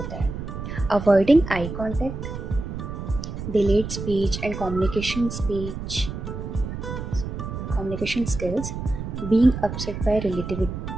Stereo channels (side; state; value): right; noise; rumble, 7 dB below the sound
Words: है। Avoiding eye contact, delayed speech and communication skills, being upset by